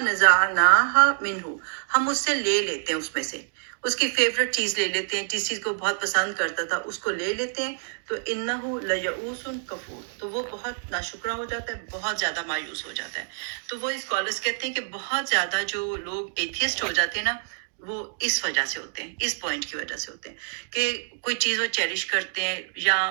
نَزَعْنَاهَا مِنْهُ، ہم اس سے لے لیتے ہیں، اس میں سے اس کی فیوریٹ چیز لے لیتے ہیں، جس چیز کو بہت پسند کرتا تھا اس کو لے لیتے ہیں، تو انَّهُ لَيَئُوسٌ کفور، تو وہ بہت ناشکرا ہو جاتا ہے، بہت زیادہ مایوس ہو جاتا ہے۔ تو وہ اسکالرس کہتے ہیں کہ بہت زیادہ جو لوگ ایتھیسٹ ہو جاتے ہیں نا، وہ اس وجہ سے ہوتے ہیں، اس پوائنٹ کی وجہ سے ہوتے ہیں کہ کوئی چیز وہ چیریش کرتے ہیں، یا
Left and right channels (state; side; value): silent; left; digital silence